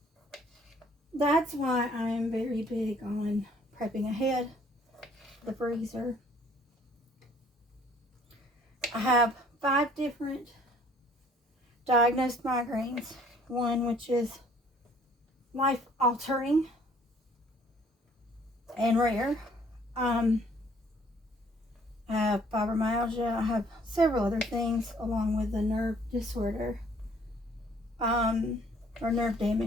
that's why I am very big on prepping ahead the freezer. I have 5 different diagnosed migraines. One which is life-altering and rare. I have fibromyalgia. I have several other things along with the nerve disorder or nerve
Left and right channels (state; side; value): normal; both; correlation 0.59